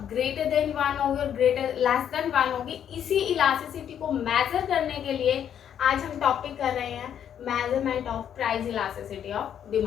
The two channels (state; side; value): quieter; right; 9.3 dB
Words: ग्रेटर देन वन होगी और ग्रेटर लेस देन वन होगी, इसी इलास्टिसिटी को मेजर करने के लिए आज हम टॉपिक कर रहे हैं measurement of price elasticity of